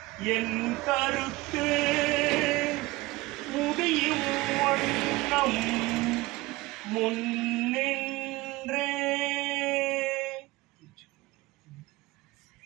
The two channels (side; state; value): left; quieter; 20.4 dB